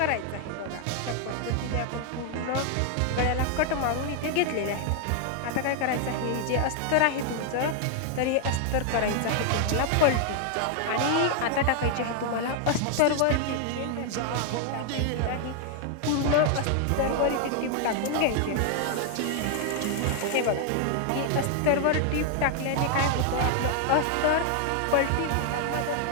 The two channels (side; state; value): both; different; correlation 0.00